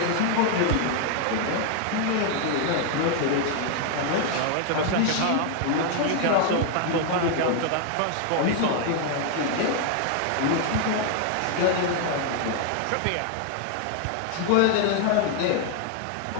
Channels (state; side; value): different; both; correlation 0.00